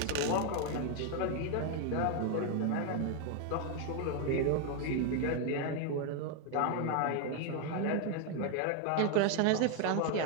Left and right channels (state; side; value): different; both; correlation 0.01